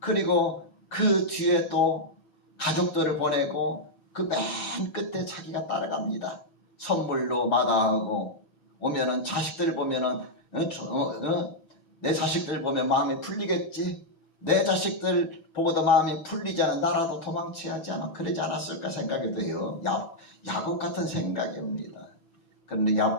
그 뒤에 또 가족들을 보내고 그 맨 끝에 자기가 따라갑니다. 선물로 마다하고 오면은 자식들 보면은 내 자식들 보면 마음이 풀리겠지. 내 자식들 보고도 마음이 풀리지 않아 나라도 도망쳐야지 아마 그러지 않았을까 생각이 돼요. 야곱 같은 생각입니다. 그런데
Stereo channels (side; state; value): right; late; 6.1 ms